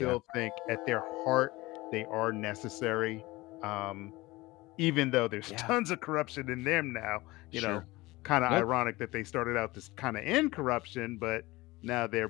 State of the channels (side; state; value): right; quieter; 20.6 dB